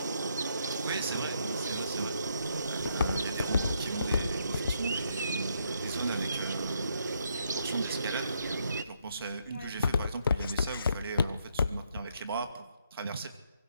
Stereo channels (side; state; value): both; inverted; correlation -0.74